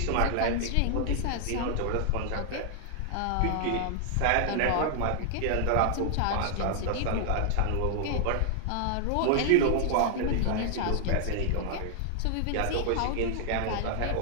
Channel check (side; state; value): both; different; correlation -0.01